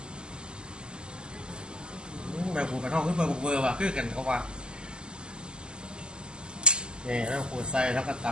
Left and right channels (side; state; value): left; late; 0.048 ms